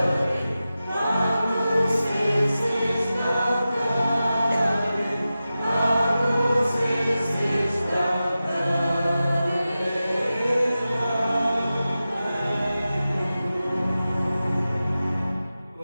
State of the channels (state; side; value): inverted; both; correlation -0.94